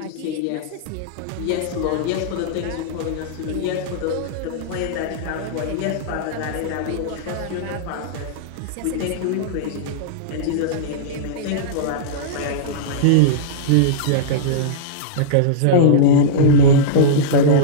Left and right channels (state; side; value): different; both; correlation -0.03